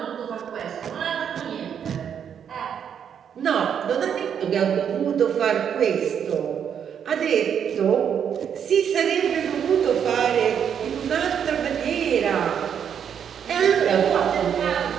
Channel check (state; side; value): quieter; left; 8.2 dB